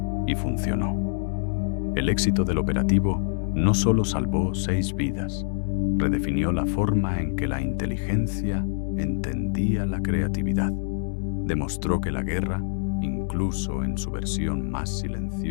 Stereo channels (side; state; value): right; silent; digital silence